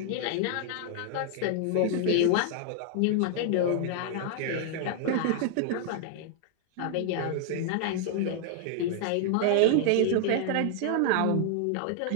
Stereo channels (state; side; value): different; both; correlation 0.00